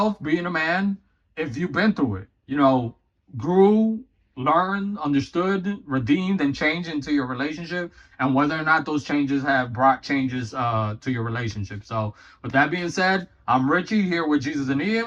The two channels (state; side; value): identical; both; correlation 1.00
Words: being a man, if you've been through it, you know, grew, learned, understood, redeemed, and changed into your relationship, and whether or not those changes have brought changes to your relationship. So with that being said, I'm Richie here with Jesus and